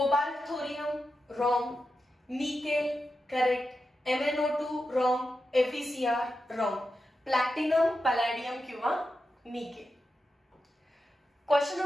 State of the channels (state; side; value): normal; both; correlation 0.89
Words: thorium, wrong. Nickel correct. MnO2 wrong. FeCr wrong. Platinum, palladium किंवा nickel. Question